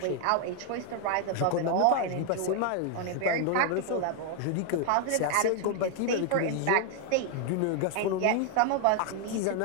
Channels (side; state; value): both; different; correlation 0.00